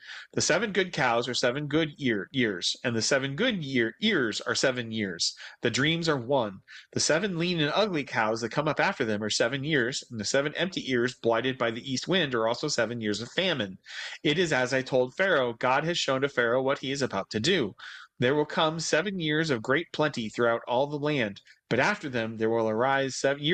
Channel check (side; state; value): both; identical; correlation 1.00